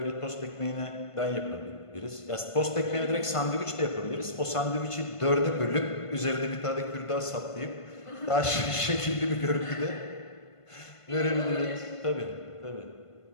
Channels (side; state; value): right; late; 1.5 ms